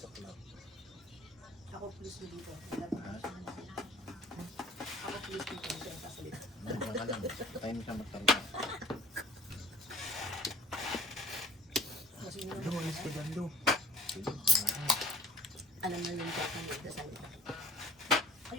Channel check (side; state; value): both; normal; correlation 0.52